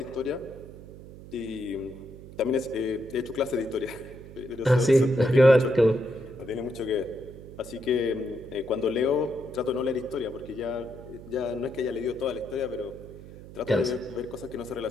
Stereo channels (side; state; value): right; noise; hum, 16 dB below the sound